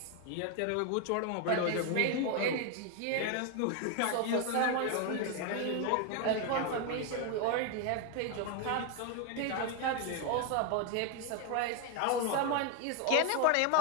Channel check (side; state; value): both; different; correlation 0.01